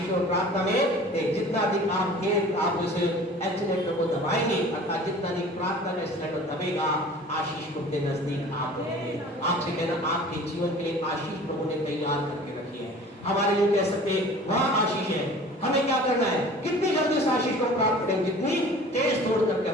और प्रार्थना में जितना अधिक आप उस एक्सीलेटर को दबाएंगे, अर्थात जितना अधिक प्रार्थना का एक्सीलेटर दबेगा, आशीष को अपने नजदीक आप रखेंगे। आपसे कहना, आपके जीवन के लिए आशीष प्रभु ने तैयार करके रखी है। हमारे लिए कह सकते हैं वहां आशीष है, हमें क्या करना है, कितनी जल्दी उस आशीष को प्राप्त करेंगे, जितनी तेज दौड़ करके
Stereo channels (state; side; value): normal; both; correlation 0.44